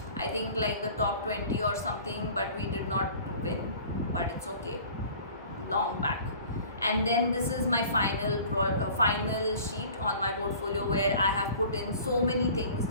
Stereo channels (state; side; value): inverted; both; correlation -0.46